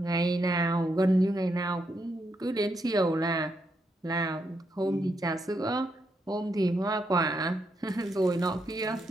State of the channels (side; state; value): both; normal; correlation 0.80